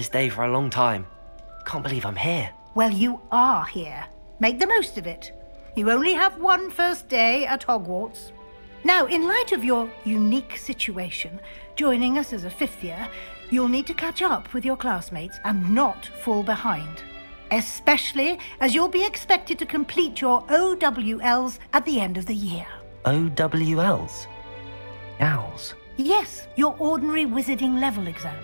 day for a long time. Can't believe I'm here. Well, you are here. Make the most of it. You only have one first day at Hogwarts. Now, in light of your unique situation, joining us as a 5th year, you'll need to catch up with your classmates and not fall behind. Especially as you'll be expected to complete your OWLs at the end of the year. OWLs? Owls? Yes, your ordinary wizarding level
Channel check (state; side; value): inverted; both; correlation -1.00